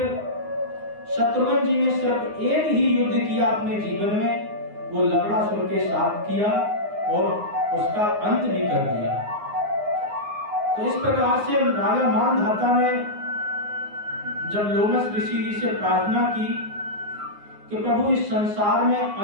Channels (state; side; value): late; left; 9.6 ms